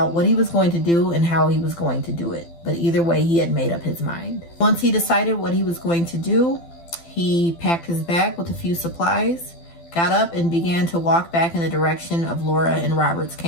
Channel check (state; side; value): late; right; 12 ms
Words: what he was going to do and how he was going to do it. But either way, he had made up his mind. Once he decided what he was going to do, he packed his bag with a few supplies, got up and began to walk back in the direction of Laura and Robert's